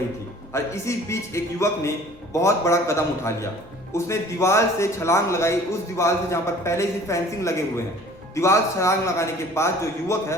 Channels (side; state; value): both; normal; correlation 0.49